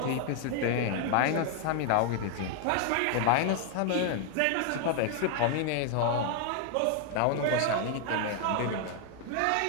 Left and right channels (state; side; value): different; both; correlation 0.00